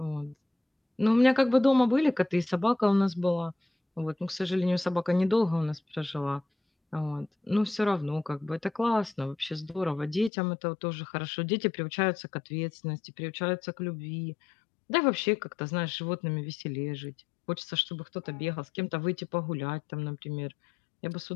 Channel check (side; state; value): right; drops out; at 10.3 s